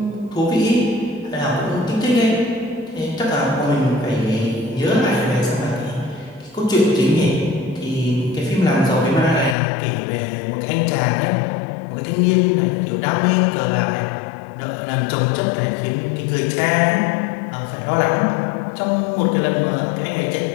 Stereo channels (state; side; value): drops out; right; at 9.6 s